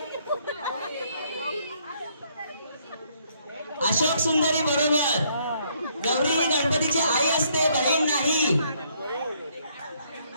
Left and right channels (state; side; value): inverted; both; correlation -0.69